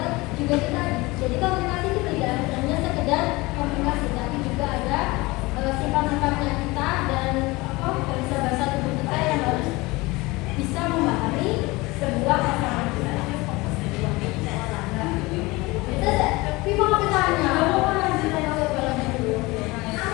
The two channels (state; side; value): quieter; right; 22.5 dB